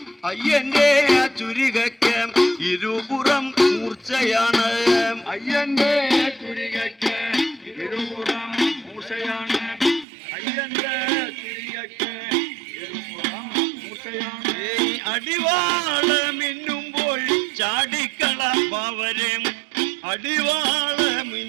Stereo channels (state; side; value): drops out; left; at 10.1 s